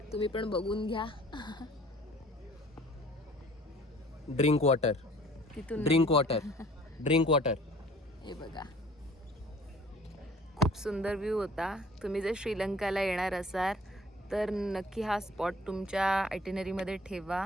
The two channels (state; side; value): normal; both; correlation 0.52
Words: तुम्ही पण बघून घ्या. ड्रिंक वॉटर, तिथून ड्रिंक वॉटर, ड्रिंक वॉटर. हे बघा, खूप सुंदर व्ह्यू होता. तुम्ही जर श्रीलंकाला येणार असाल तर नक्की हा स्पॉट तुमच्या आयटिनरीमध्ये ठेवा